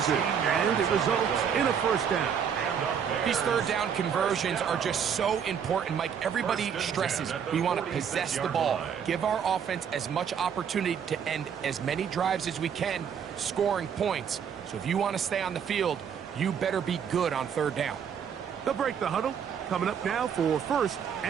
and it results in a 1st down. These 3rd down conversions are just so important, Mike. Everybody stresses we want to possess the ball, give our offense as much opportunity to end as many drives as we can, scoring points. So if you want to stay on the field, you better be good on 3rd down. They'll break the huddle. Coming up now for 1st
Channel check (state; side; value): quieter; left; 7.7 dB